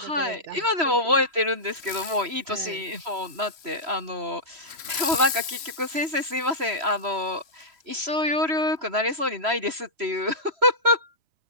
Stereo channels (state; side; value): late; left; 3.0 ms